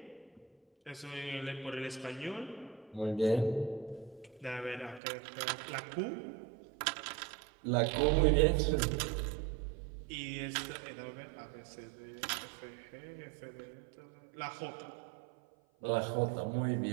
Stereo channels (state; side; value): drops out; left; at 5.0 s